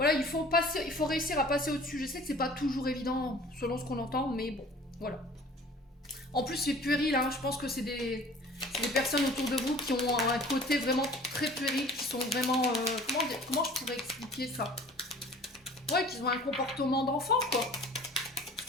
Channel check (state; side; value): normal; both; correlation 0.47